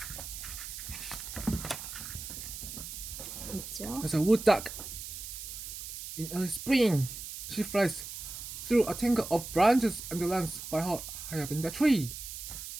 있죠. There's a wood duck. In early spring, she flies through a tangle of branches and lands by her high up in the tree.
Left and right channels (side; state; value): right; noise; hiss, 9 dB below the sound